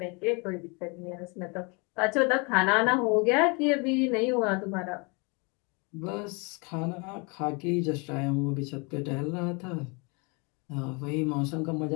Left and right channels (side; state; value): right; quieter; 31.5 dB